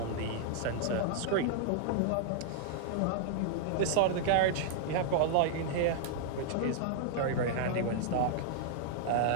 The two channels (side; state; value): both; different; correlation -0.01